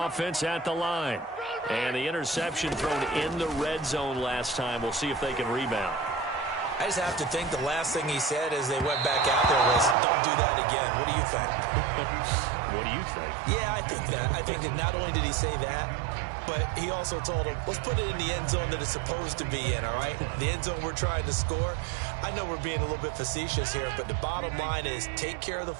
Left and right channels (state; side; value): drops out; left; at 10.0 s